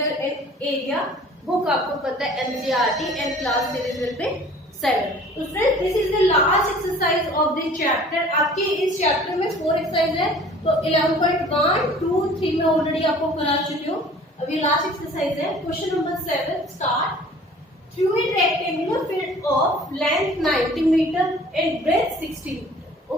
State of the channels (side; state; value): both; normal; correlation 0.49